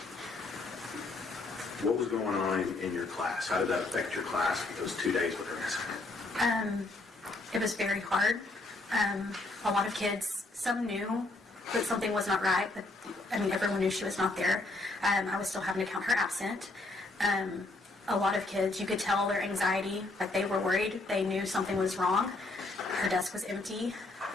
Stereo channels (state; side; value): quieter; right; 3.1 dB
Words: what was going on in your class? How did that affect your class for those 2 days with her missing? It was very hard. A lot of kids, some knew that something was not right, but everyone knew she was not there. I was still having to count her absent. A lot of kids, you could tell their anxiety, like they were worried. They knew something was wrong. Her desk was empty.